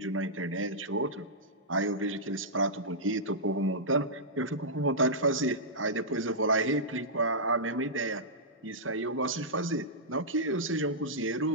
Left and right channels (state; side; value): normal; both; correlation -0.13